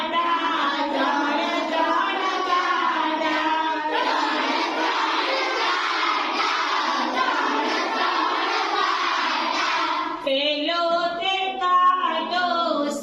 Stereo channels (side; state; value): both; identical; correlation 1.00